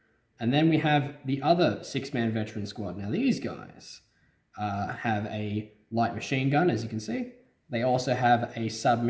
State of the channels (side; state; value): both; identical; correlation 1.00